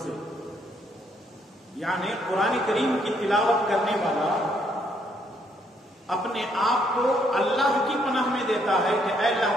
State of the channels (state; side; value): normal; both; correlation 0.71